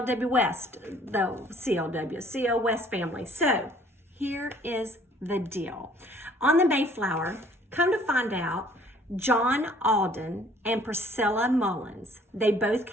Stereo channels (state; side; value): normal; both; correlation 0.57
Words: West, the CL West family. So here is the deal. On the Mayflower, come to find out, John Alden and Priscilla Mullins, they both